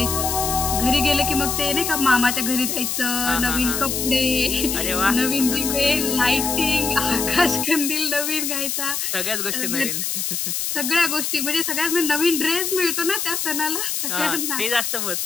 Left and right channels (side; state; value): left; noise; hiss, 1 dB below the sound